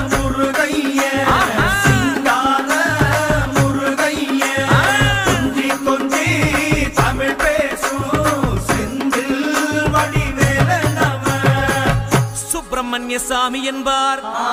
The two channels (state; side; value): identical; both; correlation 1.00